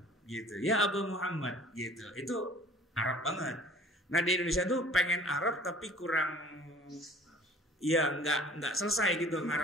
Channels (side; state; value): both; normal; correlation 0.49